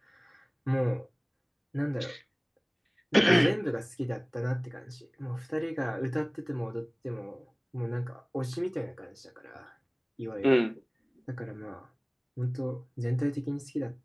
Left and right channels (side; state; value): both; identical; correlation 1.00